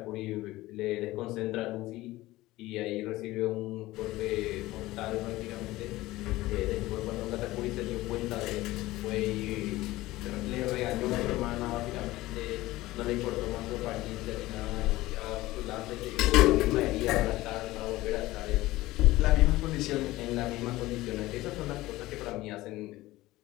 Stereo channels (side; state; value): right; quieter; 17.9 dB